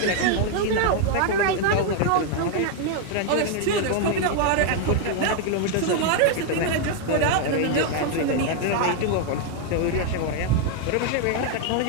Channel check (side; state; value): both; different; correlation 0.00